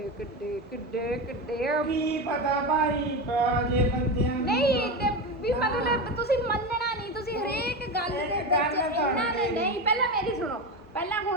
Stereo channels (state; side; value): normal; both; correlation 0.19